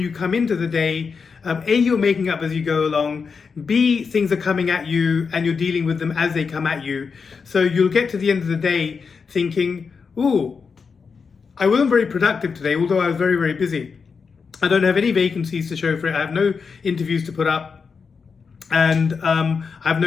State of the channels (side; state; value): right; quieter; 5.4 dB